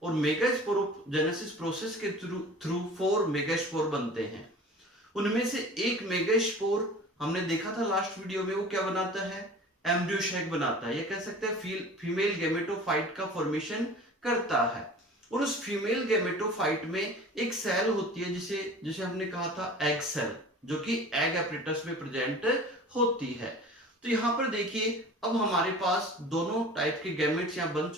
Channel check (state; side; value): normal; both; correlation 0.41